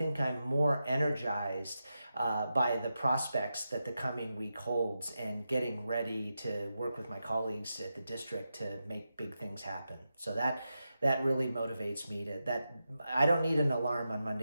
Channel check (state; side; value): inverted; both; correlation -0.89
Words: I'm more energized by the prospects that the coming week holds and getting ready to work with my colleagues at the district to make big things happen. So that really motivates me I don't need an alarm on